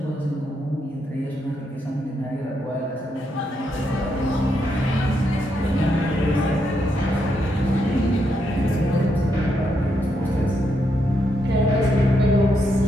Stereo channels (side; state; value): both; normal; correlation 0.79